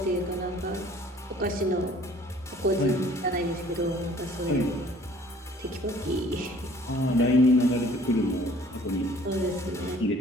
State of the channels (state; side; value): normal; both; correlation 0.54